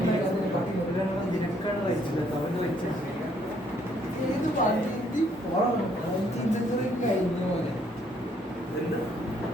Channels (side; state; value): both; normal; correlation 0.67